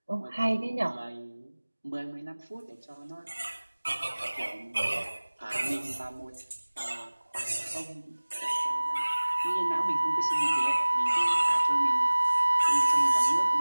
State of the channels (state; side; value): inverted; both; correlation -1.00